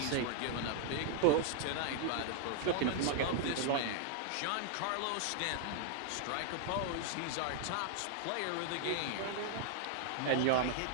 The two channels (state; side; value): different; both; correlation 0.00